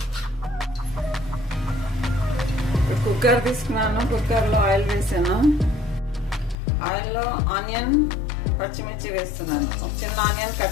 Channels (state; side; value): drops out; right; at 6.6 s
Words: కుక్కర్ తీసుకున్నాను. కుక్కర్లో ఆయిల్ వేసాను. ఆయిల్లో ఆనియన్, పచ్చిమిర్చి వేస్తున్నాను. ఒక చిన్న ఆనియన్